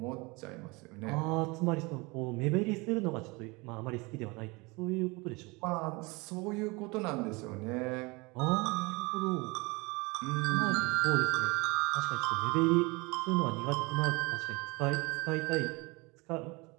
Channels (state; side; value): quieter; left; 26.1 dB